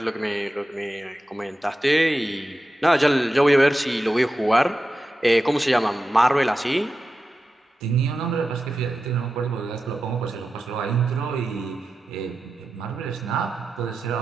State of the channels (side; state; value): both; normal; correlation 0.91